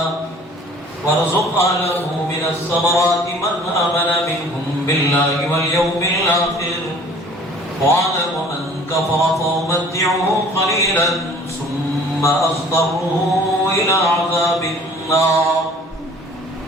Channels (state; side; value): normal; both; correlation 0.51